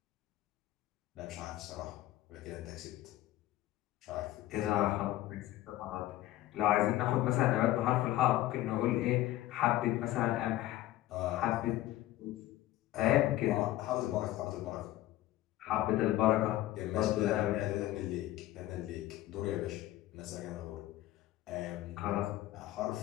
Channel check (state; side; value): quieter; right; 15.3 dB